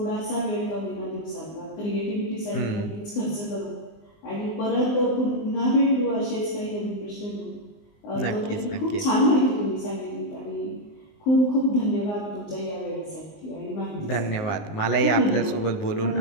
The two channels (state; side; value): late; right; 19 ms